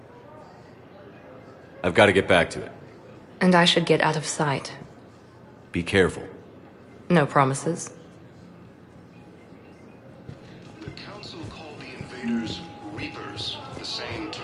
I've got to get back to it. And I should get out of sight. Be careful. No promises. The Council called the invaders Reapers, the same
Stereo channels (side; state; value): both; identical; correlation 1.00